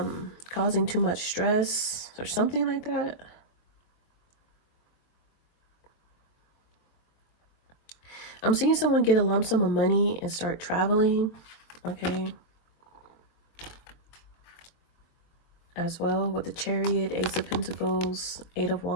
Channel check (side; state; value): right; late; 23 ms